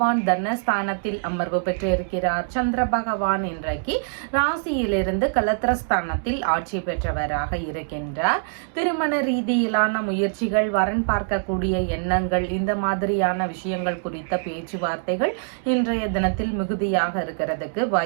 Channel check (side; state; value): left; silent; digital silence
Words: தனஸ்தானத்தில் அமர்வு பெற்றிருக்கிறார். சந்திர பகவான் இன்றைக்கு ராசியிலிருந்து கலத்திரஸ்தானத்தில் ஆட்சி பெற்றவராக இருக்கின்றார். திருமண ரீதியிலான முயற்சிகள், வரன் பார்க்கக்கூடிய எண்ணங்கள், இந்த மாதிரியான விஷயங்கள் குறித்த பேச்சுவார்த்தைகள் இன்றைய தினத்தில் மிகுதியாக இருக்கிறதுக்கு